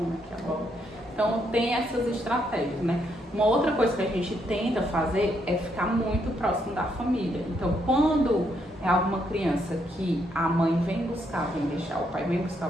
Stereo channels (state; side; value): normal; both; correlation 0.75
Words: aqui a bola. Então tem essas estratégias, né? Uma outra coisa que a gente tenta fazer é ficar muito próximo da família. Então quando é alguma criança que a mãe vem buscar, vem deixar, o pai vem buscar,